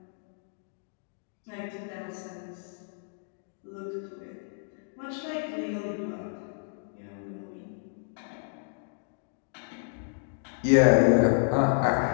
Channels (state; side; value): silent; right; digital silence